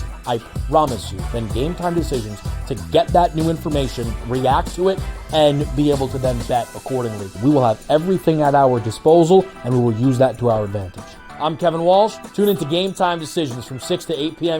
I promise you, than Game Time Decisions to get that new information, react to it, and be able to then bet accordingly. We will have everything at our disposal, and we will use that to our advantage. I'm Kevin Walsh. Tune into Game Time Decisions from 6 to 8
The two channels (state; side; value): identical; both; correlation 1.00